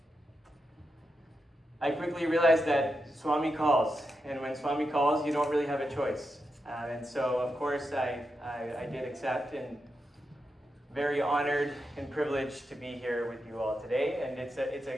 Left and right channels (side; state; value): both; normal; correlation 0.87